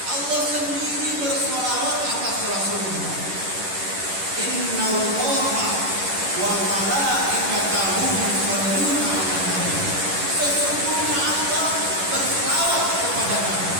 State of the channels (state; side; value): late; left; 11 ms